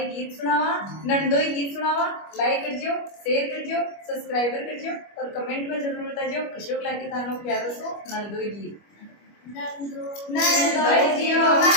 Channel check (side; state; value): right; late; 25 ms